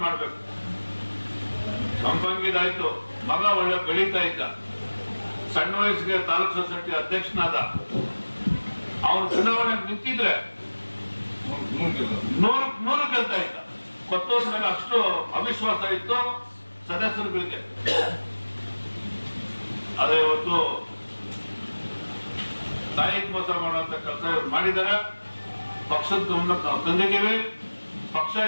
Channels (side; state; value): both; inverted; correlation -1.00